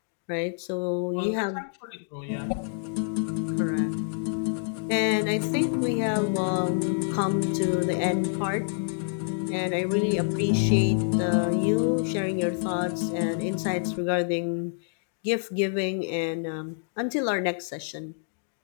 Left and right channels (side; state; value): right; silent; digital silence